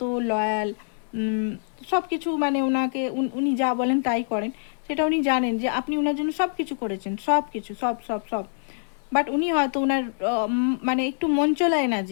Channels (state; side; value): silent; right; digital silence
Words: লয়াল, সব কিছু মানে ওনাকে উনি যা বলেন তাই করেন, সেটা উনি জানেন যে আপনি ওনার জন্য সব কিছু করেছেন, সব কিছু সব সব সব। বাট উনি হয়তো ওনার মানে একটু মঞ্চলা